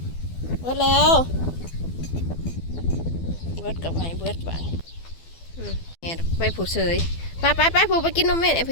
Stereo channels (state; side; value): late; right; 12 ms